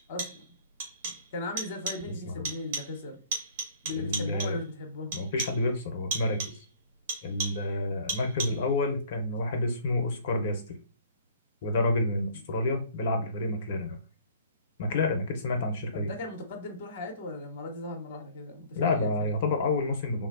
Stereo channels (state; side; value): inverted; both; correlation -0.54